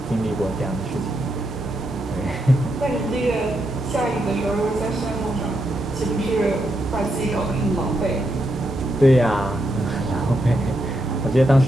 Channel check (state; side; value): normal; both; correlation 0.82